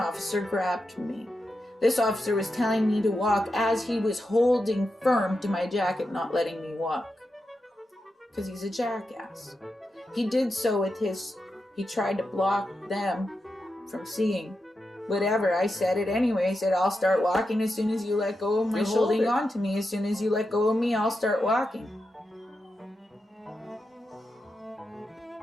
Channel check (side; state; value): both; normal; correlation 0.88